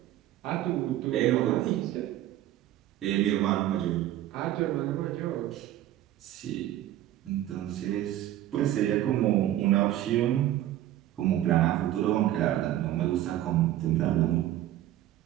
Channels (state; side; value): quieter; left; 13.4 dB